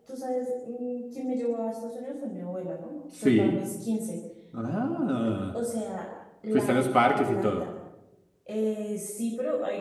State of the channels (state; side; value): identical; both; correlation 1.00